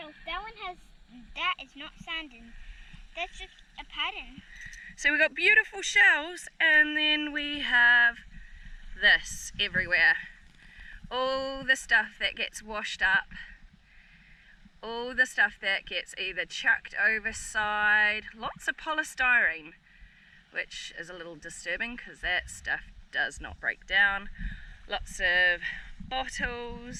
That is not sand, and that's just a pattern. So we've got beautiful shells, and then we have this everywhere. All the stuff that gets washed up, all the stuff that gets either chucked overside, lots of polystyrene, which is a little disturbing because that stuff does not break down. Lots of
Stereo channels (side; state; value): both; identical; correlation 1.00